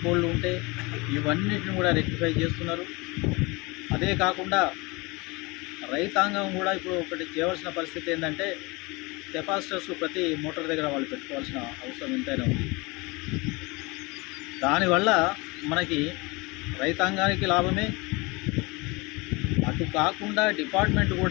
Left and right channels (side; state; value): right; quieter; 25.6 dB